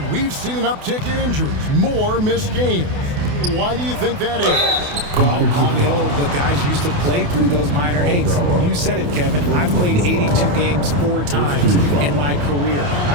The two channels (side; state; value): left; late; 28 ms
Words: we've seen an uptick in injuries, more missed games. Why do you think that is? Well, call me old, but guys used to play through those minor aches. You said it, Kevin. I've played 82 games 4 times in my career.